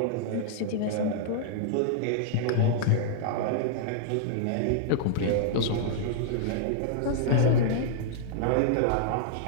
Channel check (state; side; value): different; both; correlation -0.01